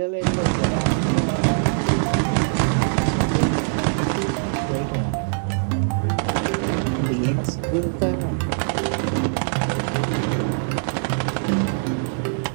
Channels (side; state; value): left; silent; digital silence